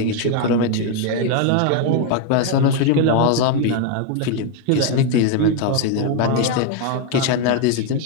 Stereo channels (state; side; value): different; both; correlation 0.01